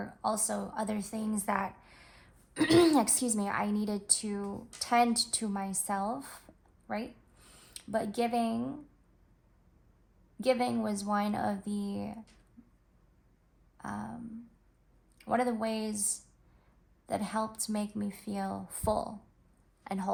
also other things that excuse me, I needed to tend to myself, right? But giving was one of the ways that helped make me feel full and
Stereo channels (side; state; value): both; identical; correlation 1.00